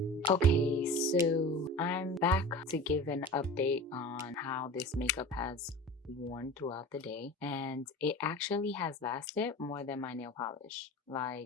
Okay, so I'm back to give an update on how this makeup has worn throughout the day, and it actually has lasted more than my nail polish.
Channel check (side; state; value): both; normal; correlation 0.35